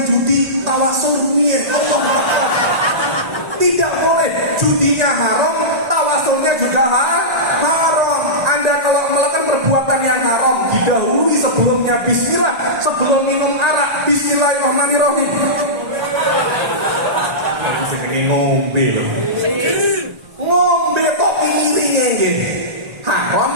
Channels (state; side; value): late; left; 1.9 ms